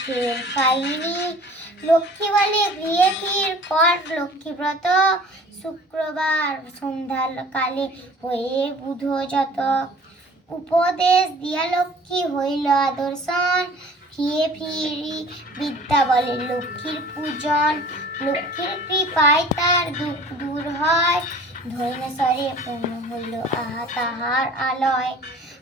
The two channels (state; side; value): normal; both; correlation 0.47